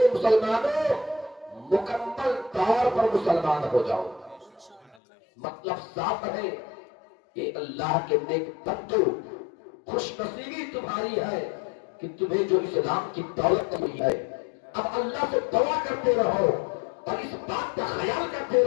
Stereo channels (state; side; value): drops out; right; at 5.0 s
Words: مسلمانوں مکمل طور پر مسلمان ہو جاؤ۔ مطلب صاف ہے کہ اللہ کے نیک بندو، خوش نصیبی تمہاری ہے کہ تمہیں جو اسلام کی دولت ملی ہے، اب اللہ سے دعا کرتے رہو اور اس بات کا خیال کرتے